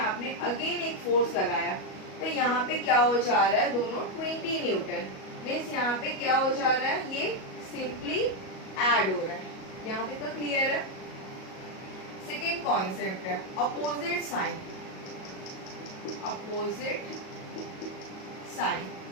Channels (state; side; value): late; right; 37 ms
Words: अगेन एक फोर्स लगाया, तो यहाँ पे क्या हो जा रहा है, दोनों 20 न्यूटन। मीन्स यहाँ पे क्या हो जा रहा है, ये सिंपली ऐड हो रहा है। यहाँ तक तो क्लियर है। सेकेंड कॉन्सेप्ट है opposite sign. Opposite sign